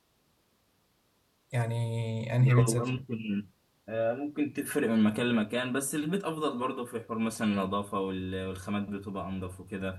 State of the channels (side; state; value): both; identical; correlation 1.00